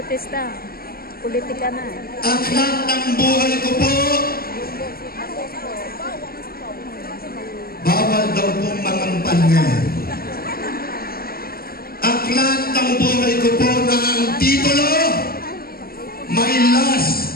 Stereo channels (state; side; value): late; right; 0.44 ms